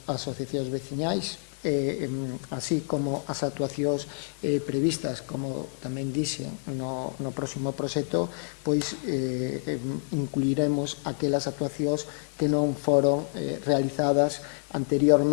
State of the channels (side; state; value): right; silent; 59 dB below the other